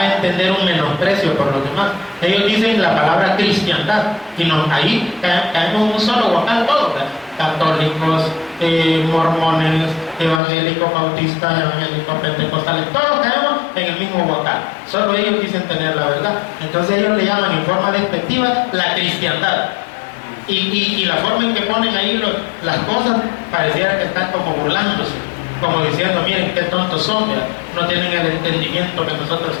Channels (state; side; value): drops out; right; at 10.4 s